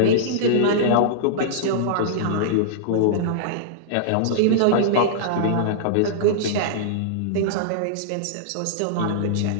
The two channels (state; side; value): different; both; correlation -0.02